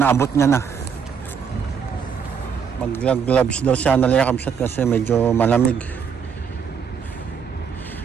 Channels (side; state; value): left; quieter; 6.7 dB